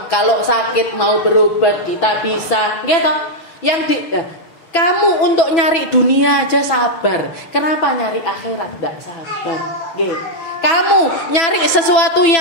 Kalau sakit mau berobat kita bisa. Nggih toh? Kamu untuk nyari dunia aja sabar. Kenapa nyari akhirat ndak sabar? Kamu nyari sesuatu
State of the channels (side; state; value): right; late; 6.0 ms